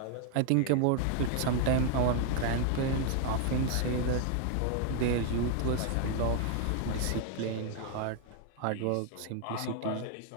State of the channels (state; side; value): different; both; correlation 0.00